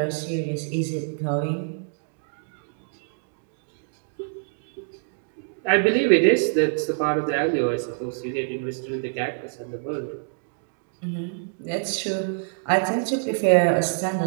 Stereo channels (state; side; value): silent; left; digital silence